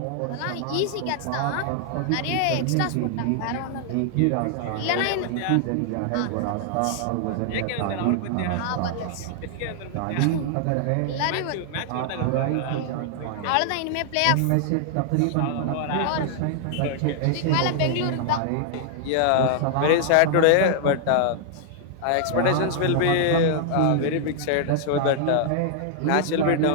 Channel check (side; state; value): both; different; correlation -0.01